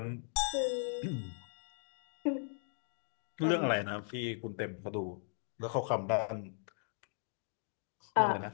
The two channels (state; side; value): silent; right; digital silence